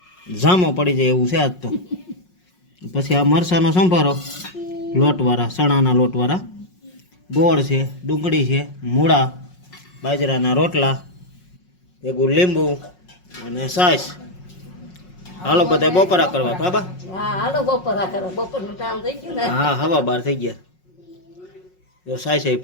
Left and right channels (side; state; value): right; late; 5.5 ms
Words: જામો પડી જાય એવું છે આજ તો પછી આ મરસાનો સંભારો લોટવાળા ચણાના લોટવાળા ગોળ છે ડુંગળી છે મૂળા બાજરાના રોટલા ભેગું લીંબુ અને છાશ હાલો બધા બપોરા કરવા બાબા હા હાલો બપોરા કરો બપોરનું કામ થઈ ગયું ને હા હવા બાર થઈ ગયા જો છાશ એ